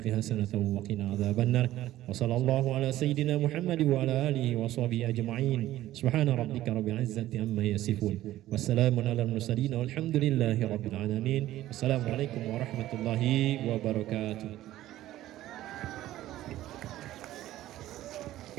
حسنة وقنا عذاب النار. وصلى الله على سيدنا محمد وعلى آله وصحبه أجمعين. سبحان ربك رب العزة عما يصفون والسلام على المرسلين والحمد لله رب العالمين. السلام عليكم ورحمة الله وبركاته.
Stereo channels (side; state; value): left; quieter; 14.5 dB